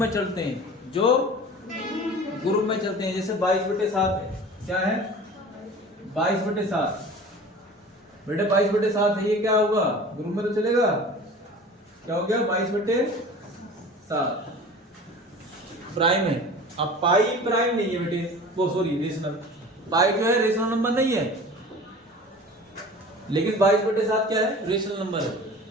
चलते हैं, जैसे 22/7 है। क्या है? 22/7 बेटे 22/7 है, ये क्या होगा? ग्रुप में तो चलेगा। क्या हो गया? 22/7 प्राइम है। अब पाई प्राइम नहीं है बेटे, वो सॉरी रेशनल, पाई जो है रेशनल नंबर नहीं है, लेकिन 22/7 क्या है? रेशनल नंबर है,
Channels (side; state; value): both; normal; correlation 0.40